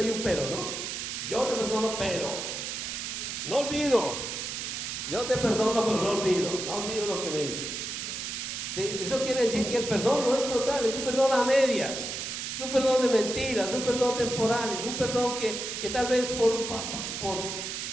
hay un pero, ¿no? Yo te perdono, pero no olvido. Yo te perdono, pero no olvido lo que me hizo. ¿Sí? Eso quiere decir que el perdón no es total, es un perdón a medias. Es un perdón de mentiras, es un perdón temporal, es un perdón que tal vez por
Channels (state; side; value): noise; right; hiss, 5 dB below the sound